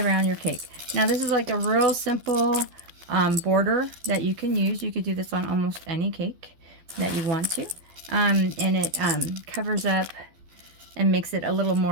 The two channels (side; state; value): left; late; 12 ms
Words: your cake. Now this is like a real simple border that you can use. You could do this on almost any cake that you want to. And it covers up and makes it a little